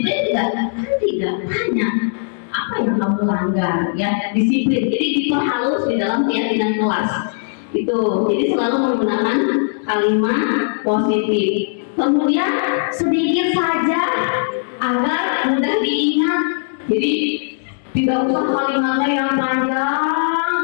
tidak? Kan tidak. Tanya apa yang kamu langgar ya, disiplin. Jadi diperhalus di dalam keyakinan kelas. Itu jadi selalu menggunakan kalimat positif. Kemudian sedikit saja agar mudah diingat. Jadi tidak usah kalimatnya yang panjang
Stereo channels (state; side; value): silent; right; 67 dB below the other